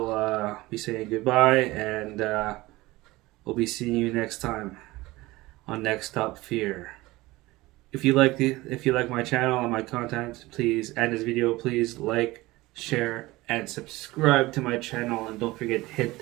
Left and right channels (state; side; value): quieter; left; 19.8 dB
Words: be saying goodbye, and we'll be seeing you next time on Next Up Fear. If you like my channel and my content, please, and this video, please like, share, and subscribe to my channel. And don't forget to